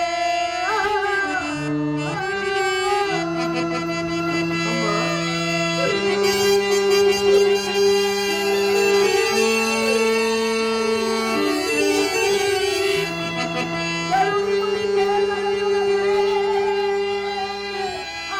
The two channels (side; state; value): right; noise; hum, 25 dB below the sound